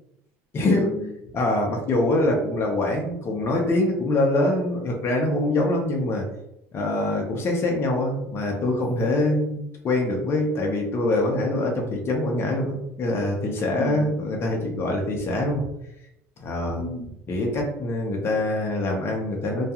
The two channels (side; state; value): both; normal; correlation 0.50